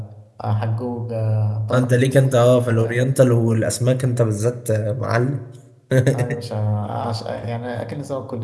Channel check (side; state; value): both; identical; correlation 1.00